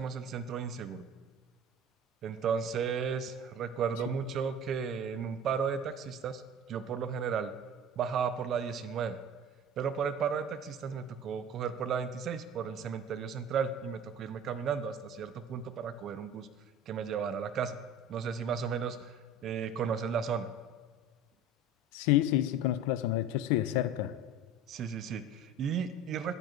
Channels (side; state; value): both; normal; correlation 0.38